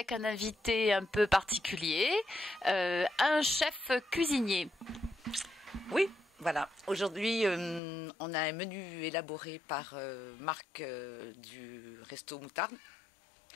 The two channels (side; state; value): right; drops out; at 7.8 s